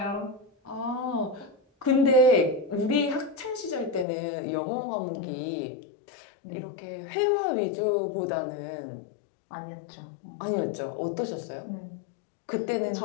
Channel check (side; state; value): right; drops out; at 4.0 s